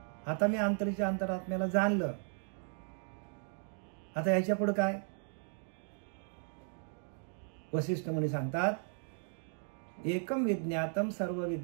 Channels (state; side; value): silent; left; 54 dB below the other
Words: आता मी अंतरीच्या अंतरात्म्याला जाणलं, आता याच्या पुढे काय? वशिष्ठ मुनी सांगतात, एकम विज्ञातम सर्व